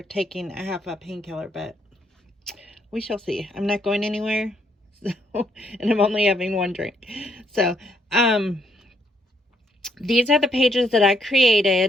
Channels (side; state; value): both; normal; correlation 0.72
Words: taking a half a painkiller, but we shall see. I'm not going anywhere, so, and I'm only having one drink. So these are the pages that I